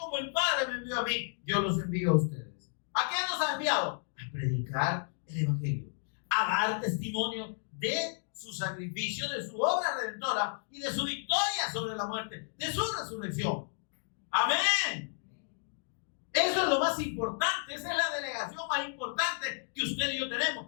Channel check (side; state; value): right; silent; digital silence